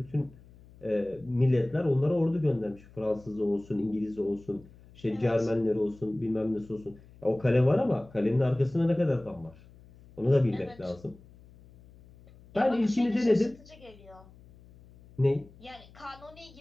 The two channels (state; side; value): noise; left; hum, 24 dB below the sound